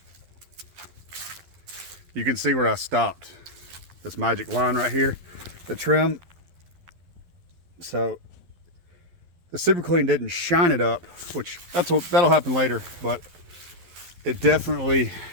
you can see where I stopped. This magic line right here, the trim. So the Super Clean didn't shine it up, which that'll happen later, but it definitely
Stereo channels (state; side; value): late; left; 11 ms